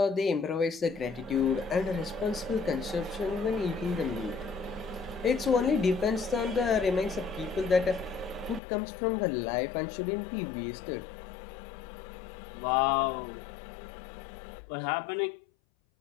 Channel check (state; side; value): drops out; right; at 8.6 s